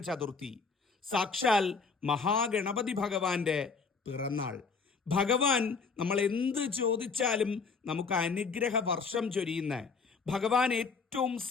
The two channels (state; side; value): quieter; right; 5.0 dB